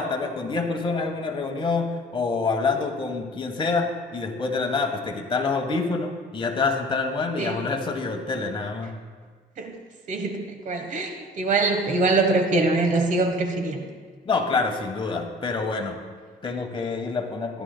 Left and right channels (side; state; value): both; normal; correlation 0.46